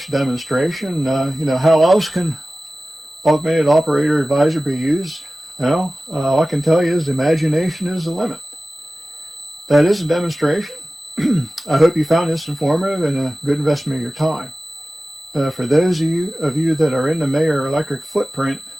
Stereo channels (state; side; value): normal; both; correlation 0.96